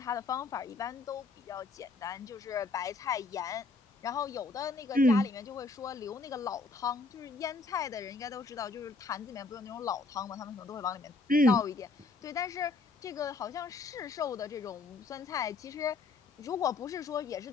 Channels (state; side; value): quieter; right; 3.7 dB